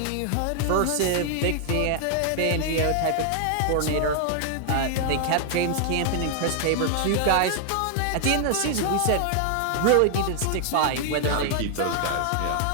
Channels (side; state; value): both; different; correlation 0.00